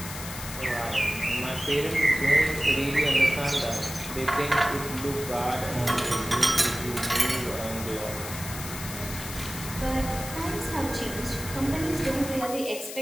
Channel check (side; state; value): left; noise; hiss, 10 dB below the sound